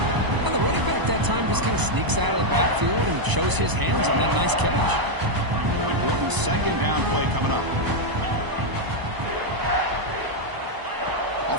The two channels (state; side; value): late; left; 1.0 ms